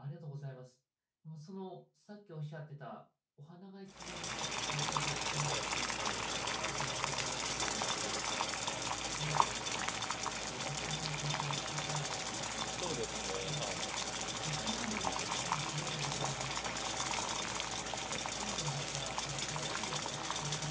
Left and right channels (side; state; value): both; identical; correlation 1.00